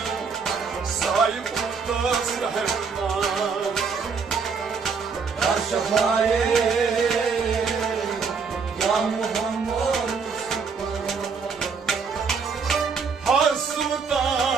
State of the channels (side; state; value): left; quieter; 5.5 dB